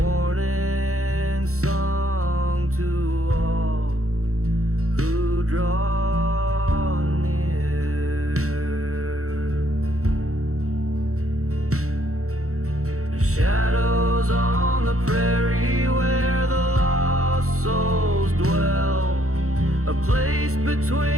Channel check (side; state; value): left; late; 0.64 ms